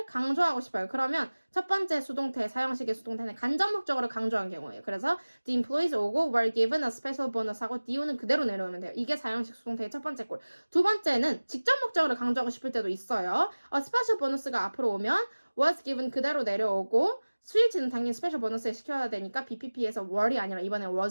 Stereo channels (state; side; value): inverted; both; correlation -1.00